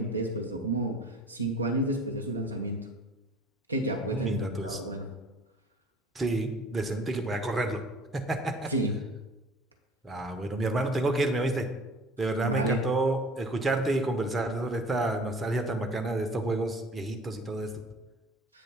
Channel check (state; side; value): normal; both; correlation 0.47